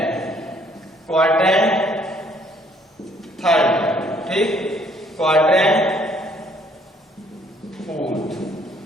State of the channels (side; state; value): both; normal; correlation 0.63